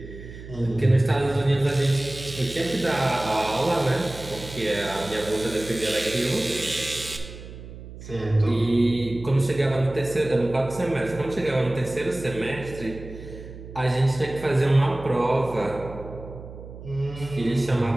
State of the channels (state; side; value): noise; right; hum, 14 dB below the sound